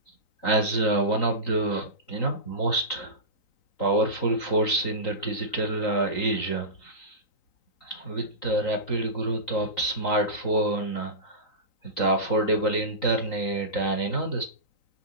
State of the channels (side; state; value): right; late; 3.9 ms